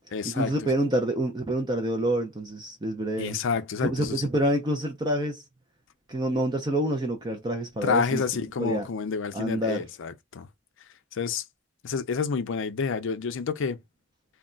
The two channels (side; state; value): both; normal; correlation 0.32